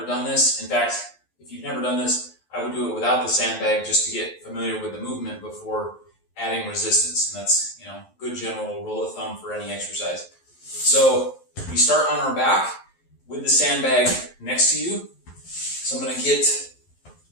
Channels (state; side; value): late; right; 11 ms